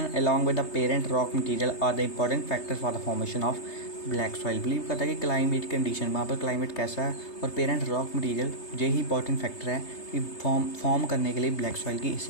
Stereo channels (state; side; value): late; right; 3.3 ms